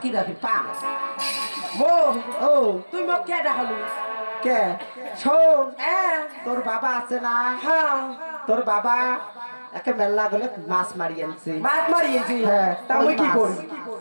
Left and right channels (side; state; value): both; inverted; correlation -1.00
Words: রাখি পাম মো ও তুই মোক কে ডাকলু কে শোন হ্যাঁ তোর বাবা আছে না হ্যাঁ তোর বাবা একে মেলা গলে মাছ মারি আনছে মাছ মারিয়েছি হ্যাঁ তা মুই কি করি